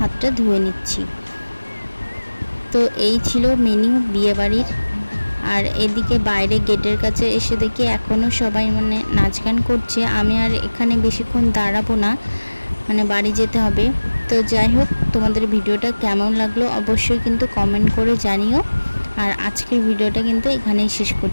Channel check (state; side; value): inverted; both; correlation -1.00